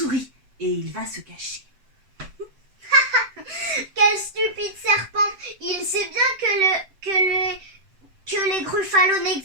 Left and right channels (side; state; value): left; late; 7.8 ms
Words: Et il va se cacher. Quel stupide serpent! Il sait bien que les gruffalos